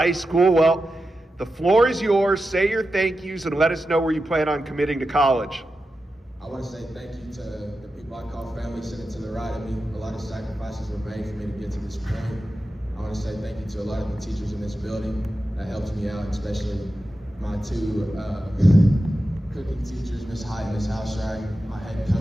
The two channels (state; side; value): normal; both; correlation 0.91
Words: School. Well, the floor is yours. Say your thank yous and let us know where you plan on committing to college. I want to say thank you to the people I call family sitting to the right of me. A lot of sacrifices were made for me to get to this point. I want to say thank you to a lot of the teachers in this building that helped me out, especially my two cooking teachers, Miss Hyde and Miss Houserack, my head